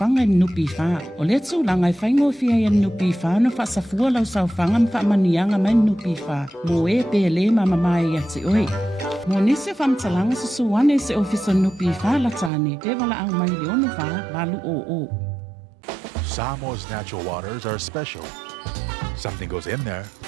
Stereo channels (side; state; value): left; drops out; at 12.5 s